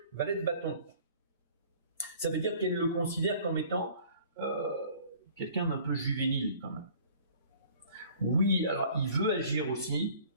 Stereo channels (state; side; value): inverted; both; correlation -0.51